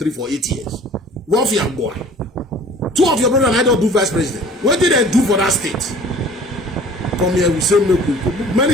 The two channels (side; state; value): both; normal; correlation 0.48